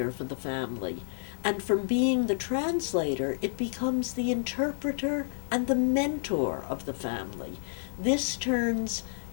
for the family. And from being the translator, it becomes the interpreter and the mentor of the family. This turns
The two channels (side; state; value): right; silent; 55 dB below the other